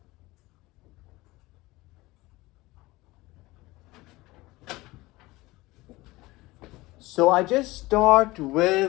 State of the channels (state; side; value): quieter; right; 20.3 dB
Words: So I just start